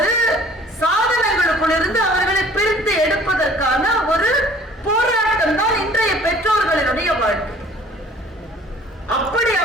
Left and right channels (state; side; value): normal; both; correlation 0.52